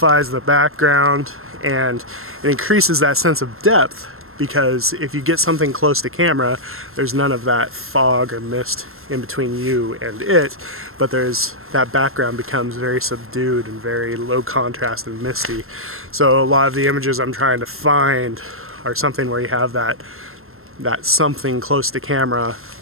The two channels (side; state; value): left; late; 0.62 ms